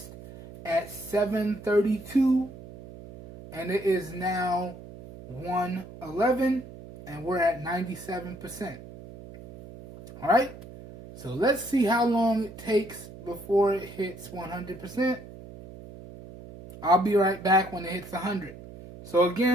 at 7:32, and it is now 1:11, and we're at 97%. All right, so let's see how long it takes before it hits 100%. I'll be right back when it hits 100. So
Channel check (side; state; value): right; noise; hum, 16 dB below the sound